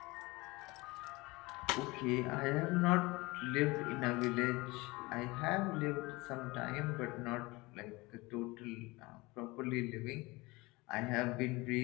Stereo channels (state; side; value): quieter; right; 23.0 dB